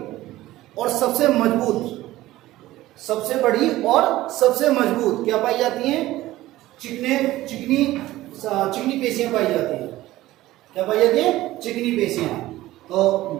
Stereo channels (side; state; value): left; quieter; 16.4 dB